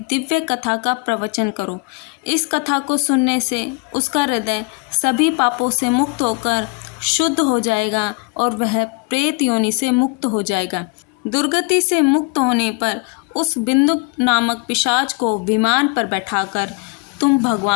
कथा का प्रवचन करो। इस कथा को सुनने से उसका हृदय सभी पापों से मुक्त होकर शुद्ध हो जाएगा और वह प्रेत योनि से मुक्त हो जाएगा। दुर्गति से मुक्त होने पर उस बिंदु नामक पिशाच को विमान पर बैठाकर तुम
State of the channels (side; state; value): right; quieter; 29.0 dB